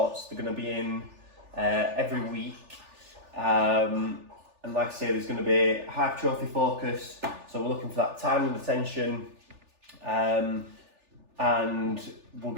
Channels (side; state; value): left; late; 3.4 ms